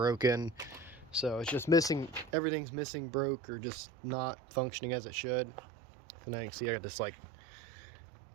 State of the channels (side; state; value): left; drops out; at 2.4 s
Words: So it's just missing, everything's missing, broke, or just not functioning as it should. So now you can see I got this like